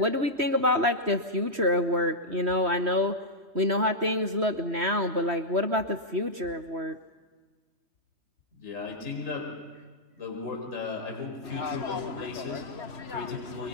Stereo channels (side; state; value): left; late; 3.1 ms